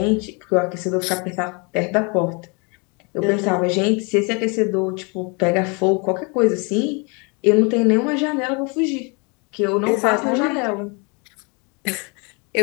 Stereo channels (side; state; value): right; quieter; 32.0 dB